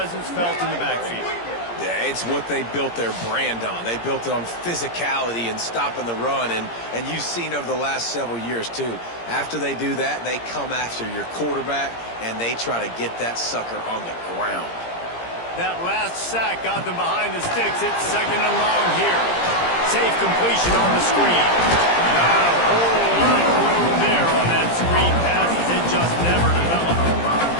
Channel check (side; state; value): right; late; 17 ms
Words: felt in the backfield. Yeah, it's what they built their brand on. They built it on physicality and stopping the run, and you've seen over the last several years, too. After they do that, they come after your quarterback, and they try to get that sucker on the ground. That last sack got them behind the sticks. It's second and long here. Safe completion on the screen. Not a whole lot of room there on that screen pass as it just never developed.